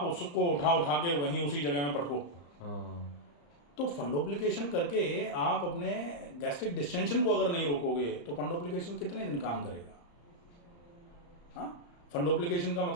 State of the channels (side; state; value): right; late; 35 ms